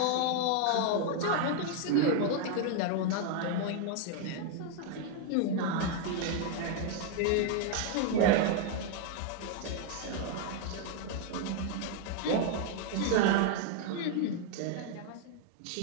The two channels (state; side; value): different; both; correlation 0.00